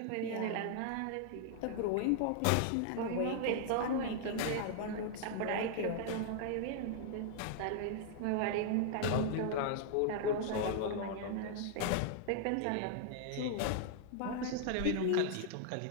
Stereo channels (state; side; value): different; both; correlation -0.01